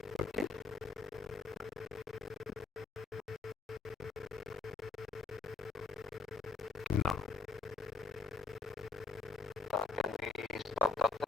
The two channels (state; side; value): quieter; right; 4.3 dB